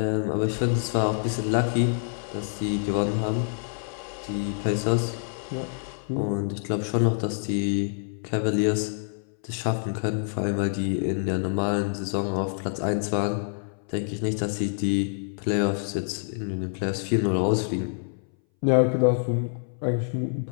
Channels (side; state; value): right; silent; 59 dB below the other